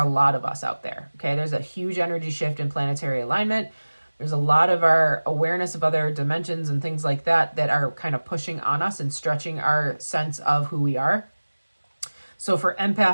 lot of us out there, okay? There's a huge energy shift in planetary alignment. There's a lot of our awareness of other dimensions and things like that that are kind of pushing on us and stretching our sense of who we are. So for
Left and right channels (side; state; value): both; inverted; correlation -1.00